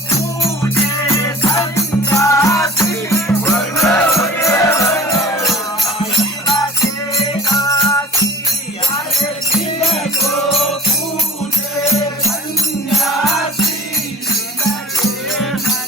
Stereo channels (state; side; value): normal; both; correlation 0.42